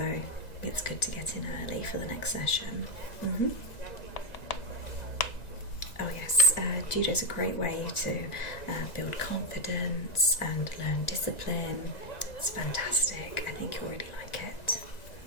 it's good to get in early for the next session. Oh yes, Judo is a great way to build confidence and learn discipline. It's fantastic. I think you'll really like it.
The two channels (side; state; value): right; late; 1.9 ms